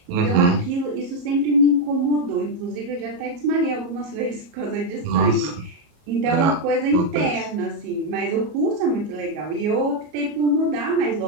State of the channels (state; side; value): late; left; 34 ms